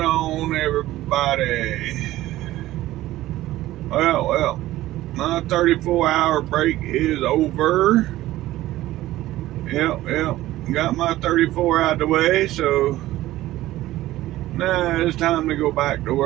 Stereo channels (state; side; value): quieter; left; 15.7 dB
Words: on, everybody? Well, my 34-hour break is over. Yep. Got my 34 out of the way, so now it's time to go back to